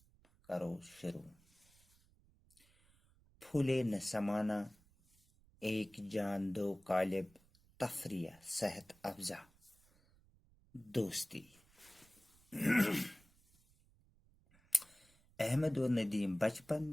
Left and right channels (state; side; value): noise; right; rumble, 30 dB below the sound